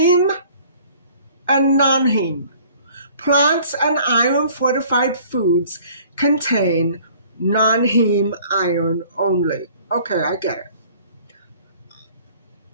and non-heme. Plants and iron-fortified foods contain non-heme iron only. Okay, I get it.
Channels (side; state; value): both; inverted; correlation -0.53